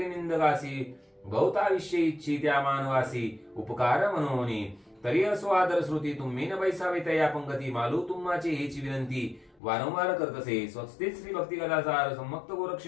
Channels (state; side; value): drops out; right; at 9.6 s